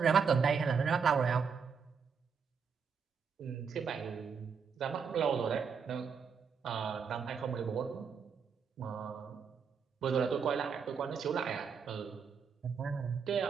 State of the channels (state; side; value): quieter; left; 6.2 dB